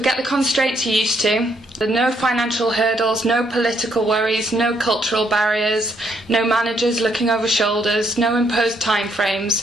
the constraints you're used to. There are no financial hurdles, no political worries, no cultural barriers, no managers looking over shoulders, no imposed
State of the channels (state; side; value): normal; both; correlation 0.72